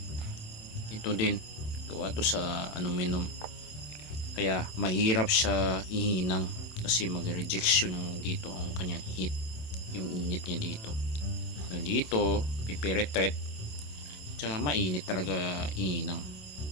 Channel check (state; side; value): late; right; 27 ms